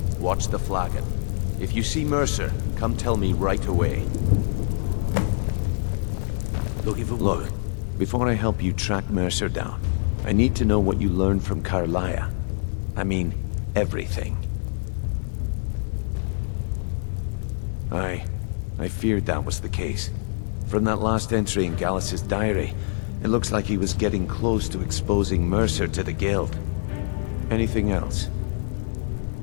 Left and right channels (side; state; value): right; silent; digital silence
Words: watch the flagon. If you see Mercer, come tell me right away. Looking for Look, work. before I help you track Mercer down, I need to know what you learned from Carlia. I mean, everything. I feared that was the case. From that last entry in Gallus's diary, it looks like he was getting close to exposing Mercer to the Guild. Anything else?